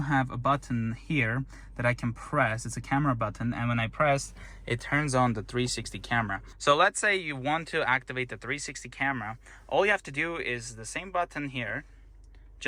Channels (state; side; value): identical; both; correlation 1.00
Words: a button here that I can press. It's a camera button, and when I press, it turns on the 360 camera. So let's say you want to activate the 360 camera. All you have to do is the same button here,